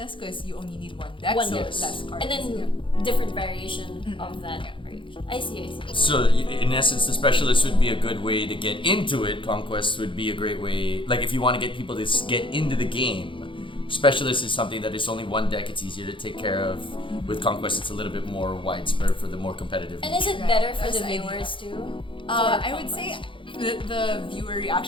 because you only need one deck, so less cards. And then different variation of that variation. I see. So in essence, the specialist would be a good way to get into it. Conquest would be a great way, like if you want to get people to get into the game. Specialist is something that is only one deck, it's easier to take care of. With Conquest, it's a little bit more widespread for the more competitive. And is it better for the viewers too? I would say the viewer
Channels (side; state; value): right; late; 0.25 ms